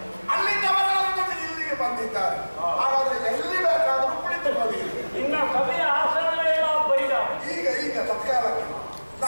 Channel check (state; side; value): inverted; both; correlation -1.00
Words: ಅಲ್ಲಿದ್ದವರೆಲ್ಲ ಇಲ್ಲಿಗೆ ಬಂದಿದ್ದಾರೆ. ಹಾಗಾದ್ರೆ ಎಲ್ಲಿ ಬೇಕಾದರೂ ಕುಳಿತುಕೊಳ್ಳಿ. ಇನ್ನ ಸಭೆಯ ಆಸನವೇ ಬೈದ. ಈಗ ತತ್ಕಾಲಕ್ಕೆ